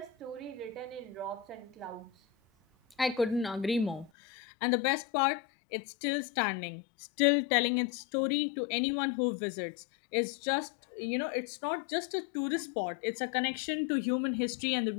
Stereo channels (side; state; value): right; drops out; at 4.1 s